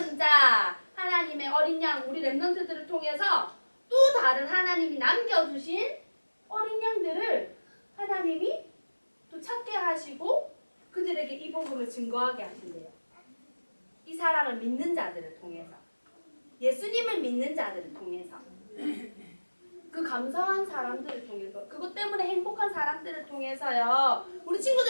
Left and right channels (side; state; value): both; inverted; correlation -1.00